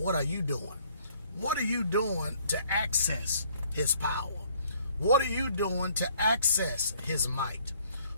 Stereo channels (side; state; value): both; inverted; correlation -0.61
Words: are you doing? What are you doing to access His power? What are you doing to access His might?